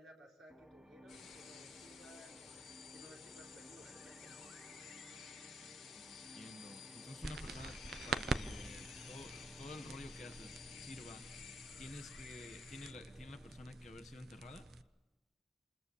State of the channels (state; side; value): normal; both; correlation 0.74